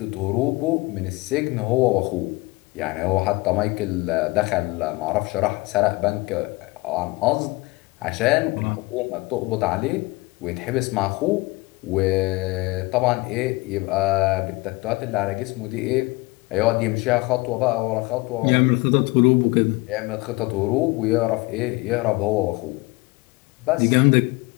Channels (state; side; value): quieter; right; 23.6 dB